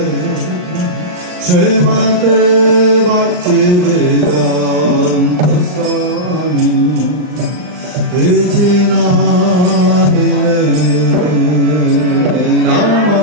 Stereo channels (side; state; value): left; late; 39 ms